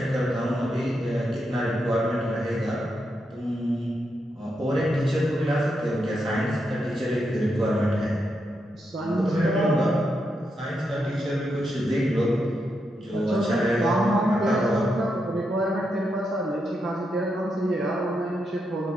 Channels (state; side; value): normal; both; correlation 0.83